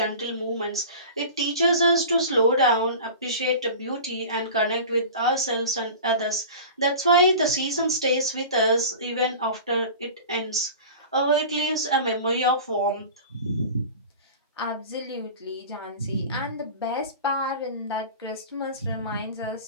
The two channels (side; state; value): both; inverted; correlation -0.36